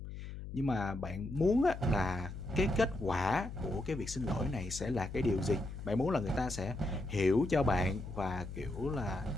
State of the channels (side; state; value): left; noise; hum, 9 dB below the sound